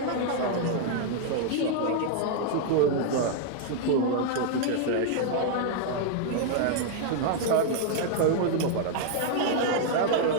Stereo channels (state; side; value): different; both; correlation 0.00